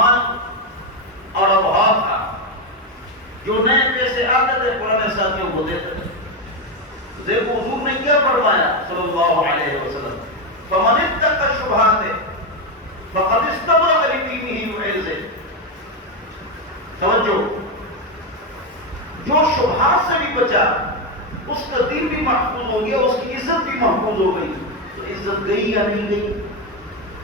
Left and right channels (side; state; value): both; normal; correlation 0.09